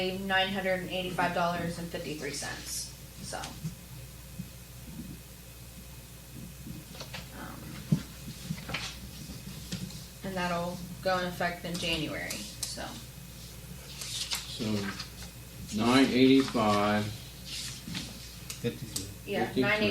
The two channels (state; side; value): identical; both; correlation 1.00